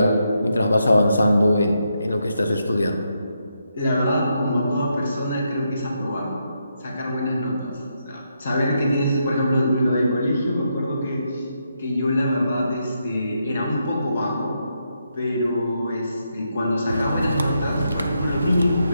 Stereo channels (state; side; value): inverted; both; correlation -0.81